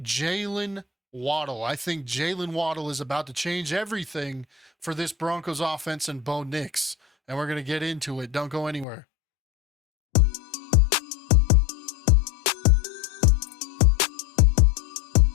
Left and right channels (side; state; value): right; drops out; at 8.8 s